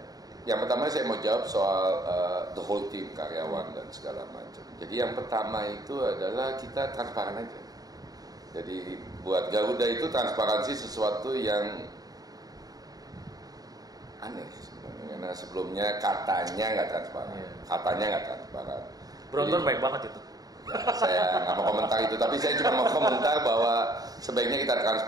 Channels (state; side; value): late; left; 0.18 ms